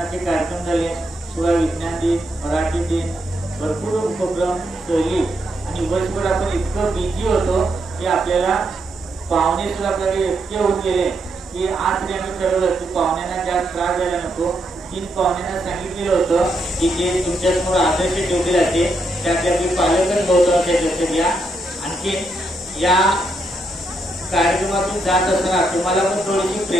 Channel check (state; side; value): normal; both; correlation 0.79